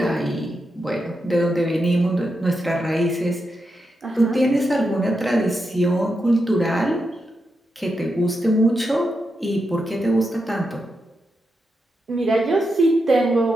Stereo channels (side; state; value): both; normal; correlation 0.86